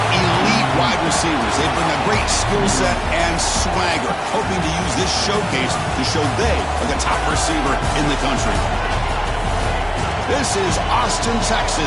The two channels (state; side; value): identical; both; correlation 1.00